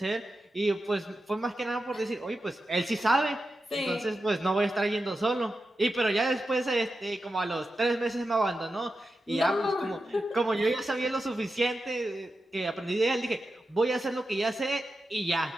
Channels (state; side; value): normal; both; correlation 0.90